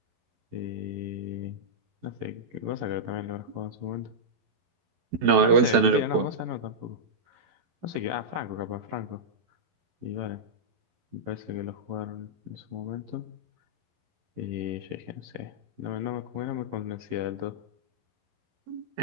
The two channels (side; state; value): left; late; 12 ms